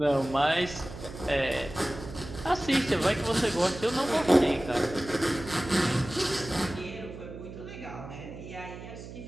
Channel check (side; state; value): right; noise; hum, 12 dB below the sound